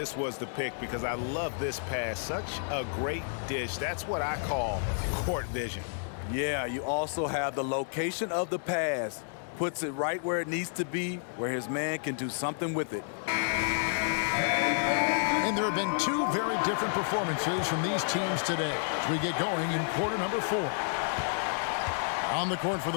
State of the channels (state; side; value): silent; right; digital silence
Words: was the pick because I love this pass. Such a great dish. That's what I call court vision. Yeah, you also have the location of the pass. Puts it right where it needs to be, where his man can do something with it. And there have been two very different performances from these teams today as we get going in quarter number 4. On the court for